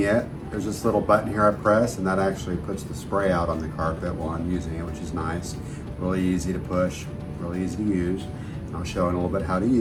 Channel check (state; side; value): identical; both; correlation 1.00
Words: it, there's this little button here I press, and that actually puts the spray out on the carpet while I'm using it, which is nice. Really easy to push, really easy to use. I'll show in a little bit how to